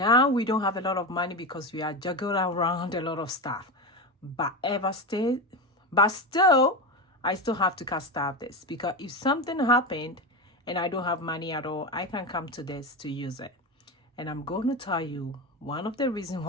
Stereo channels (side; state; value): both; normal; correlation 0.19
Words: we don't have a lot of money because we are juggling around a lot of stuff. But still, I still have to cast off this because if something happened and I don't have money at all, I can come to this to use it. And I'm going to tell you one of the reasons